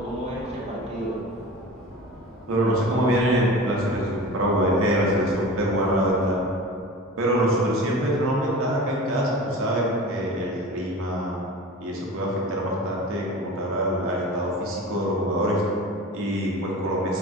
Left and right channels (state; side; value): normal; both; correlation 0.36